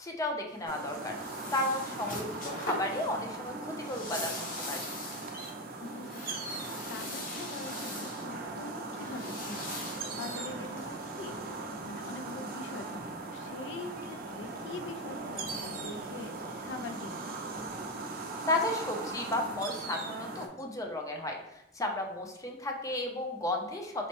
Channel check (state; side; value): normal; both; correlation 0.12